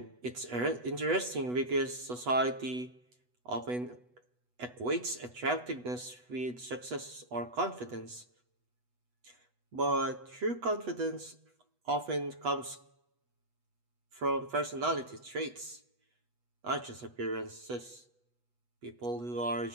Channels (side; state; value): left; late; 8.1 ms